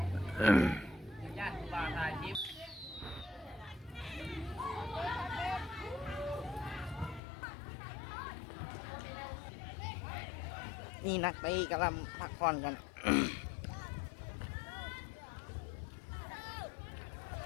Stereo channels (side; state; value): right; drops out; at 7.2 s